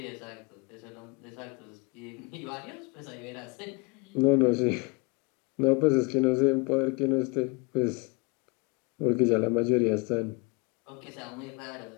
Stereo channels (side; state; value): right; quieter; 29.8 dB